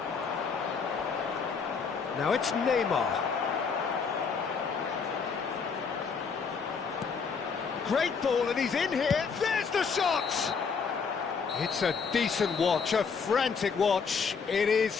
Now it's Neymar. Great ball, and he's in here. There's the shot! It's a decent watch, a frantic watch. It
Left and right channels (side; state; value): right; quieter; 5.7 dB